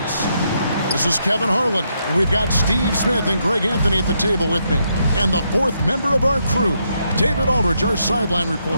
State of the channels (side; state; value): both; inverted; correlation -0.78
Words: This is Kevin Harlan, and we've got Steve Smith and Greg Anthony at the table with me. And the fourth member of our crew, David Aldridge, our sideline